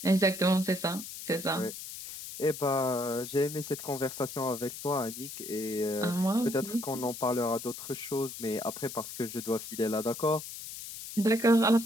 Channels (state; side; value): noise; left; hiss, 10 dB below the sound